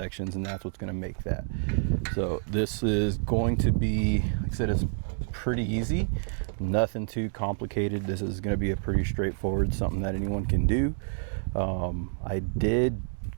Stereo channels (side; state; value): left; silent; digital silence